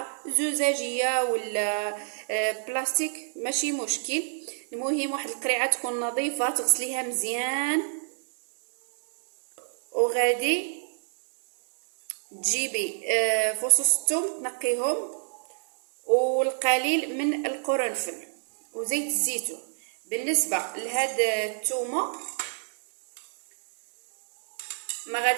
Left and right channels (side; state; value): left; silent; 60 dB below the other